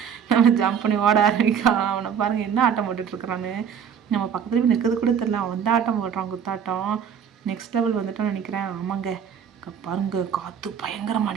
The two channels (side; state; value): left; quieter; 7.8 dB